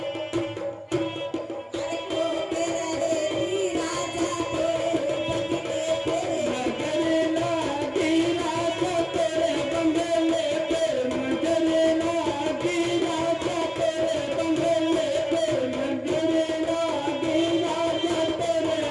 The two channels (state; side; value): identical; both; correlation 1.00